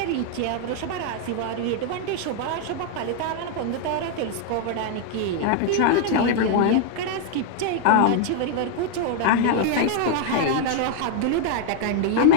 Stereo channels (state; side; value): different; both; correlation 0.00